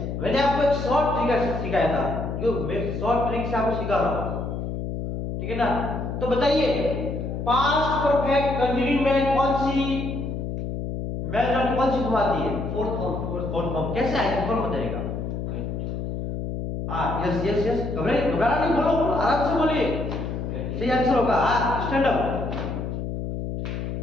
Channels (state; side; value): noise; left; hum, 4 dB below the sound